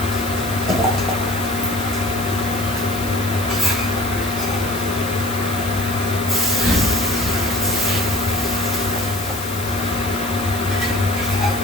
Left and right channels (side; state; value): left; noise; hiss, 10 dB below the sound